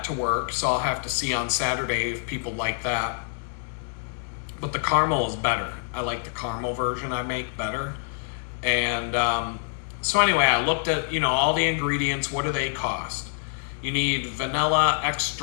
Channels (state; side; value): silent; right; digital silence